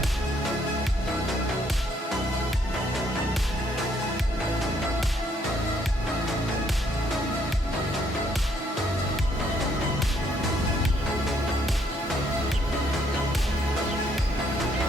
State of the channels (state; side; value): normal; both; correlation 0.69